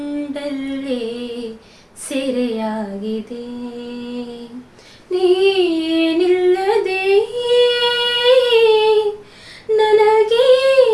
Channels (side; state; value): both; identical; correlation 1.00